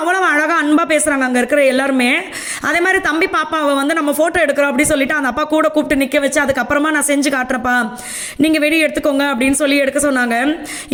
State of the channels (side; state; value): both; identical; correlation 1.00